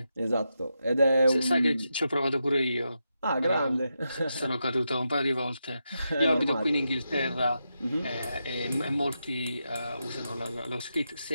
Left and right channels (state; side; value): inverted; both; correlation -0.86